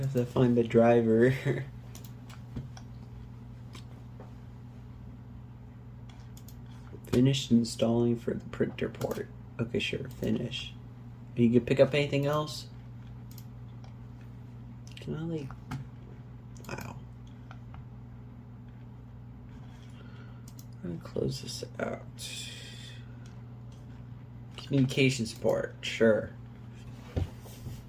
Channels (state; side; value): identical; both; correlation 1.00